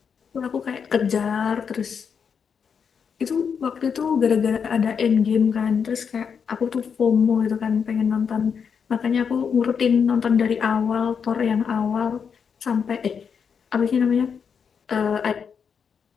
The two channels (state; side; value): quieter; right; 6.6 dB